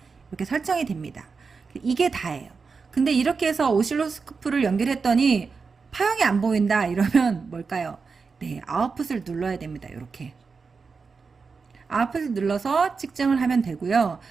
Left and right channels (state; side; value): quieter; left; 4.9 dB